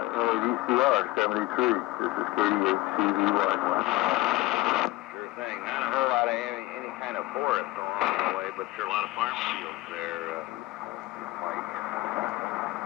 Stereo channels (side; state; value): right; quieter; 19.8 dB